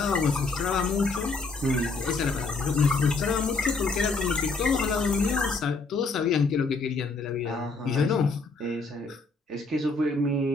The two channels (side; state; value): right; quieter; 3.8 dB